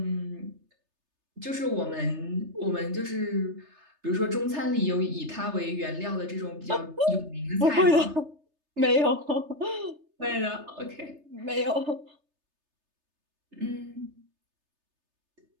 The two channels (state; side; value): late; left; 3.3 ms